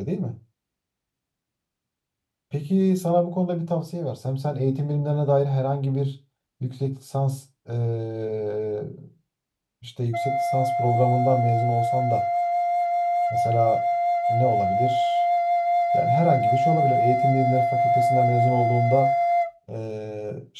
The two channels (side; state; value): both; identical; correlation 1.00